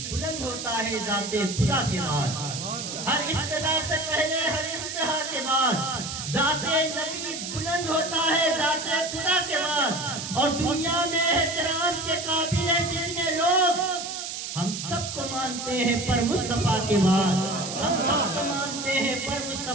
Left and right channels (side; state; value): right; noise; hiss, 6 dB below the sound